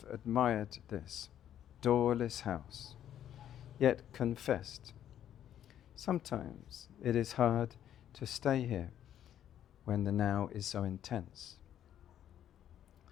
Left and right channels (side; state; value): right; quieter; 10.7 dB